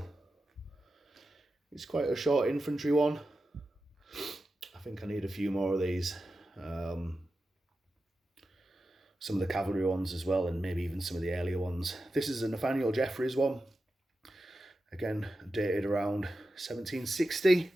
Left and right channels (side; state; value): both; normal; correlation 0.91